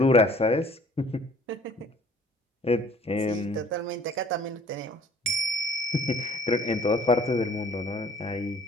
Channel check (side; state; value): both; normal; correlation 0.52